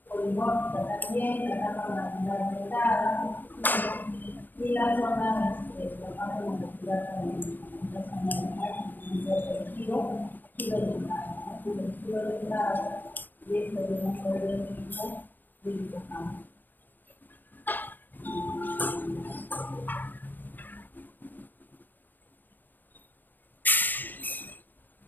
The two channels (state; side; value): late; right; 0.088 ms